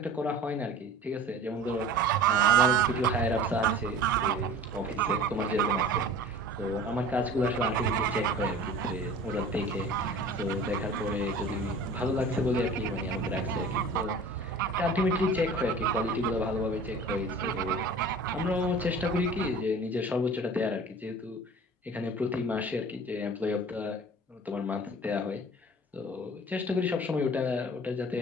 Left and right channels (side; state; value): both; normal; correlation 0.41